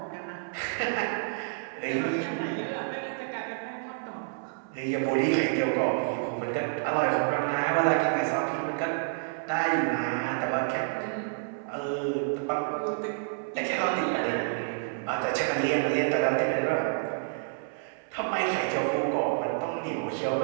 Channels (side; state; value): left; silent; 59 dB below the other